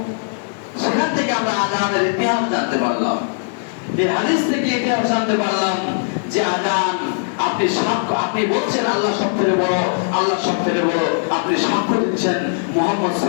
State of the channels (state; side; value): silent; right; digital silence